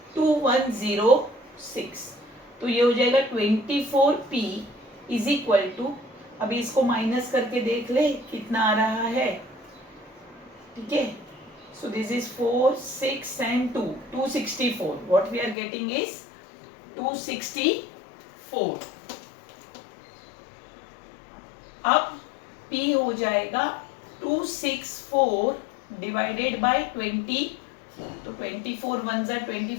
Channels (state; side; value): drops out; right; at 15.6 s